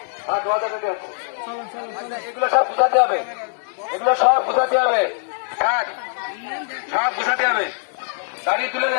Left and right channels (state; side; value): silent; right; digital silence